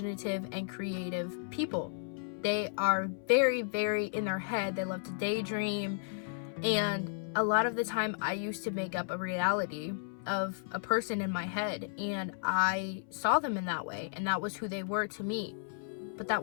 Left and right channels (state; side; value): silent; right; 55 dB below the other